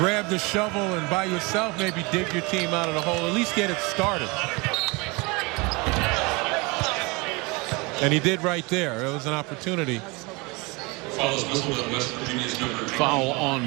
the shovel and by yourself maybe dig your team out of the hole, at least get it started. And he did right there. It was an opportunity. Foul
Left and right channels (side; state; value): left; quieter; 26.8 dB